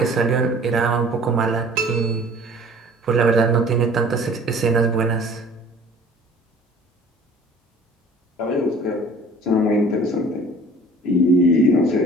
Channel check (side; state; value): both; normal; correlation 0.49